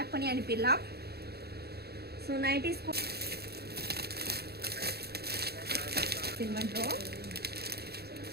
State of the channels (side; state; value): left; late; 0.46 ms